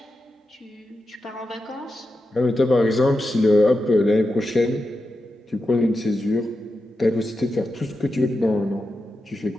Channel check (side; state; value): both; normal; correlation 0.89